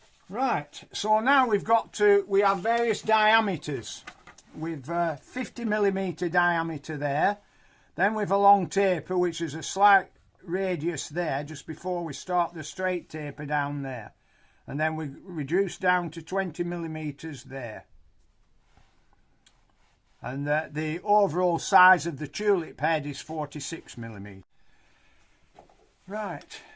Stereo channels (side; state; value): both; identical; correlation 1.00